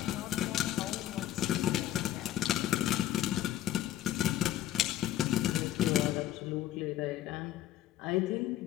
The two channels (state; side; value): quieter; right; 12.9 dB